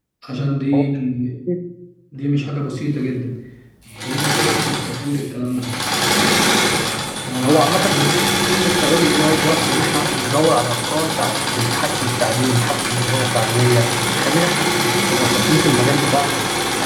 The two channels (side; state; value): both; identical; correlation 1.00